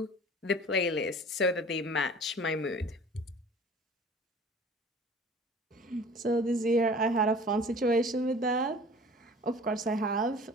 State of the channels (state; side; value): normal; both; correlation 0.45